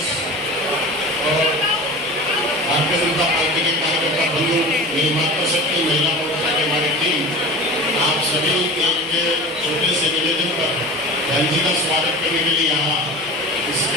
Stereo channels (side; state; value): both; normal; correlation 0.34